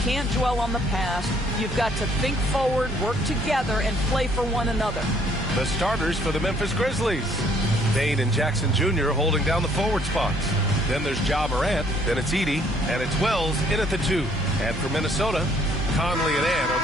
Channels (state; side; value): normal; both; correlation 0.64